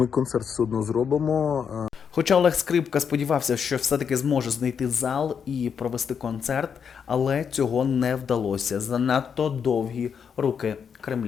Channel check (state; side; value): quieter; right; 7.0 dB